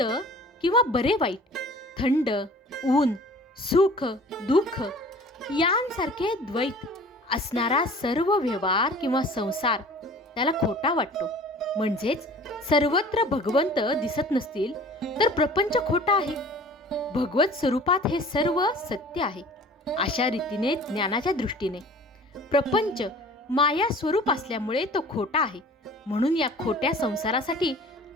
किंवा बरे वाईट, थंड, ऊन, सुख, दुःख यांसारखे द्वैत असणारा सर्व व्यवहार किंवा संसार त्याला खोटा वाटतो. म्हणजेच सर्वत्र भगवंत दिसत नसतील तर प्रपंच खोटा आहे. भगवत स्वरूपात हे सर्व सत्य आहे. अशा रीतीने ज्ञानाच्या दृष्टीने प्रपंच माया स्वरूप असल्यामुळे तो खोटा आहे. म्हणून या खोट्या संसारासाठी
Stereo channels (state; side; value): normal; both; correlation 0.46